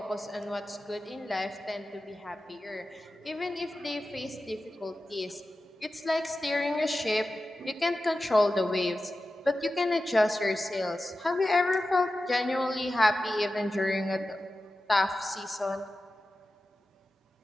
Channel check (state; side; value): normal; both; correlation 0.93